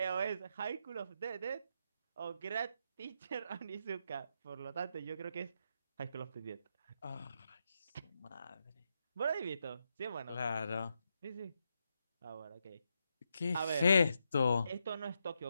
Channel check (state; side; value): inverted; both; correlation -0.82